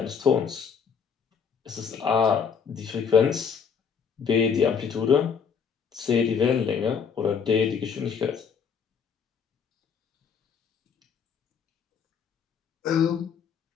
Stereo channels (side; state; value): right; quieter; 6.6 dB